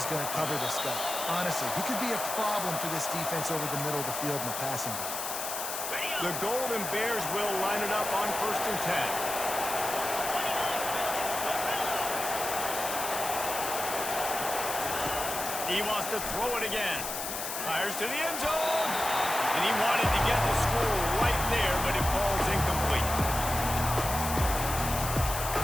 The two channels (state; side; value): noise; left; hiss, 5 dB below the sound